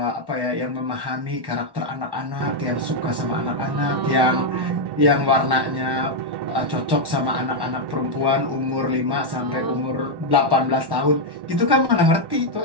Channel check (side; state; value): left; late; 1.1 ms